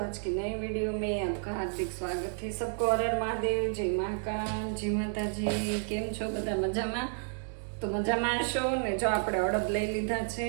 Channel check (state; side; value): silent; left; 57 dB below the other